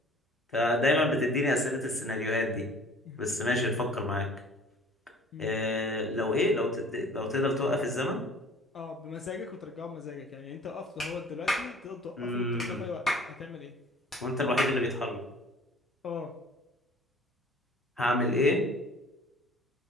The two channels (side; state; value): both; normal; correlation 0.49